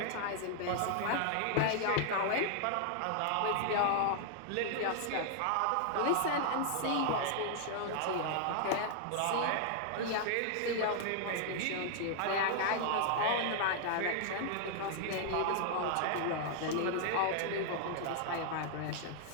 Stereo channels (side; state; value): both; different; correlation -0.01